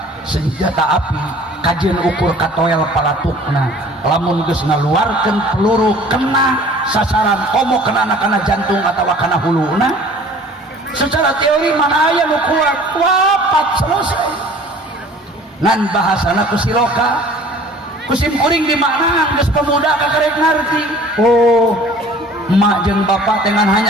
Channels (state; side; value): normal; both; correlation 0.49